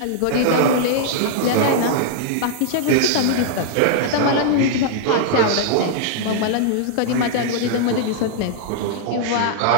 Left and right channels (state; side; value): different; both; correlation -0.01